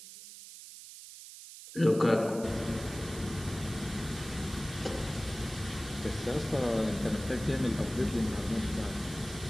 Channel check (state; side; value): noise; right; hiss, 14 dB below the sound